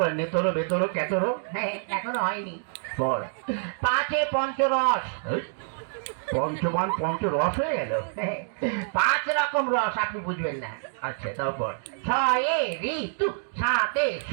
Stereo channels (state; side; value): silent; left; digital silence